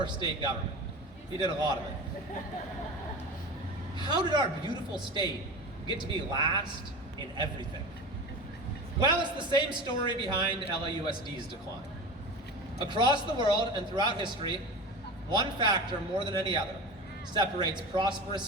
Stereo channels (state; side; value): normal; both; correlation 0.30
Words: state government? We did a lot of it. How did our beautiful state get to be last in everything? Well, it's the same story behind LAUSD's decline. Across the world and throughout history, one factor more than any other separates prosperous